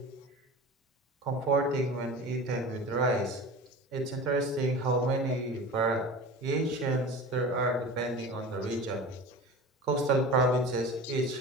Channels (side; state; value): both; normal; correlation 0.34